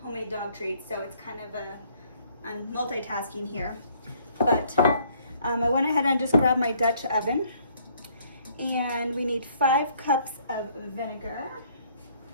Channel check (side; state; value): both; inverted; correlation -0.63